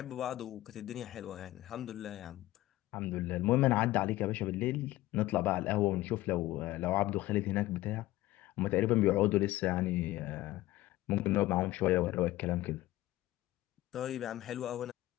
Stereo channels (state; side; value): quieter; right; 16.8 dB